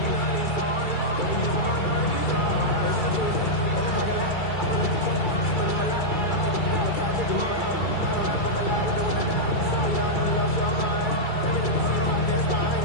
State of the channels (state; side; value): late; right; 2.3 ms